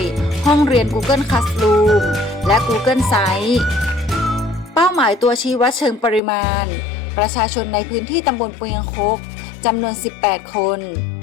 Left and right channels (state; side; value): drops out; right; at 6.2 s